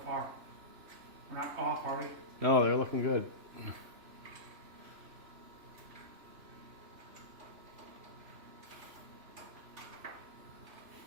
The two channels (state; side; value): late; left; 3.0 ms